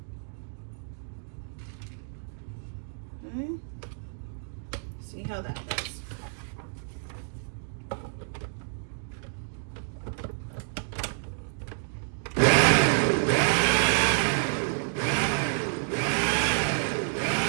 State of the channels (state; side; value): silent; left; digital silence